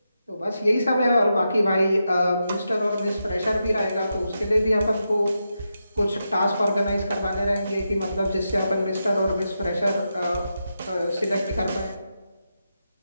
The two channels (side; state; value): both; inverted; correlation -0.87